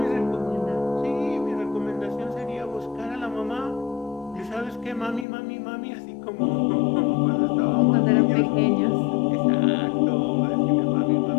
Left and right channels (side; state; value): right; drops out; at 5.2 s